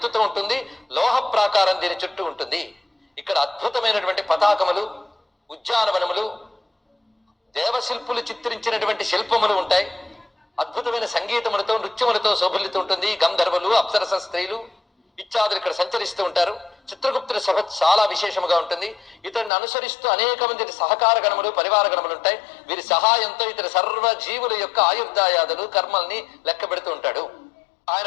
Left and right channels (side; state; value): right; drops out; at 19.5 s